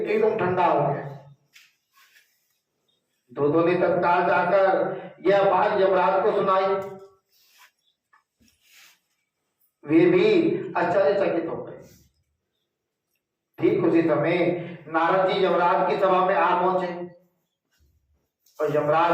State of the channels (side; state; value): both; identical; correlation 1.00